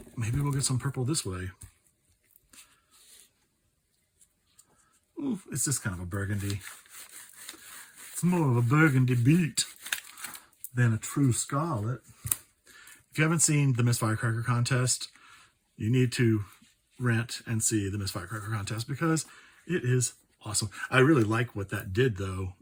we'll get some purple this way. Ooh, it's just kind of a burgundy. It's more of a burgundy beet than a true scarlet. If you haven't seen the Miss Firecracker contest, you need to rent and see the Miss Firecracker contest because it is awesome. I really like what that did though.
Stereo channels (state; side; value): identical; both; correlation 1.00